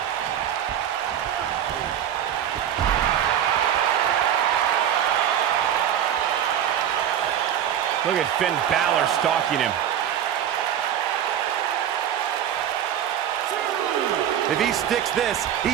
Look at Finn Balor stalking him. If he sticks this,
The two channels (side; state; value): left; quieter; 10.0 dB